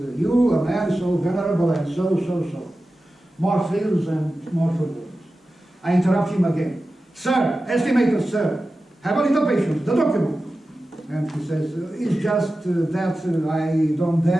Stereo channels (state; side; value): normal; both; correlation 0.94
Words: a man so venerable and so. More thrills and more turbulence. I interrupt him again. Sir, estimated sir, have a little patience, the document. And he says, it's just that I don't